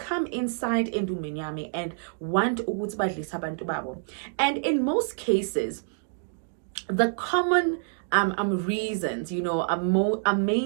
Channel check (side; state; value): left; silent; digital silence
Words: inside endumeni yami and want ukuthi badlisa abantu babo. And in most cases, the common reasons, are